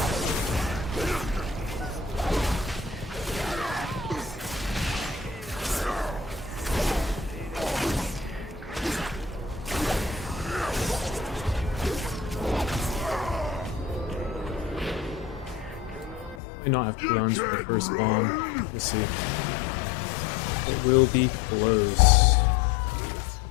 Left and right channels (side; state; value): right; drops out; at 16.4 s